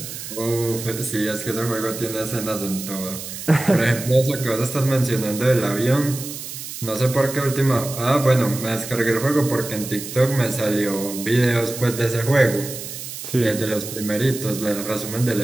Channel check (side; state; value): right; noise; hiss, 9 dB below the sound